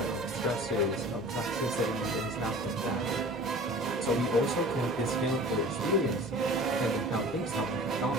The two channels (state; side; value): normal; both; correlation 0.42